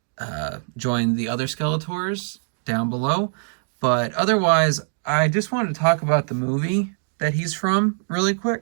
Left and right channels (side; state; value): left; silent; digital silence